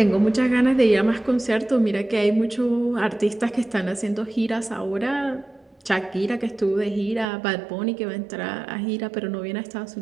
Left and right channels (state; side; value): drops out; left; at 7.2 s